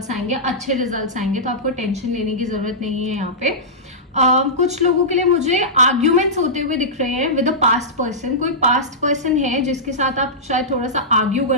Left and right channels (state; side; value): normal; both; correlation -0.14